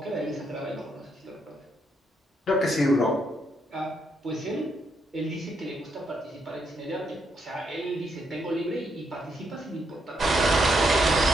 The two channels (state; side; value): normal; both; correlation 0.77